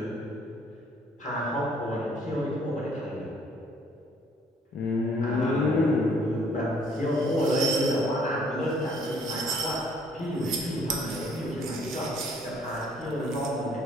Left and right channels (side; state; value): both; normal; correlation 0.61